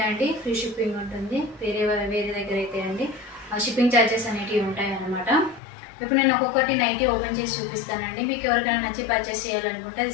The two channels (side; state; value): right; drops out; at 5.6 s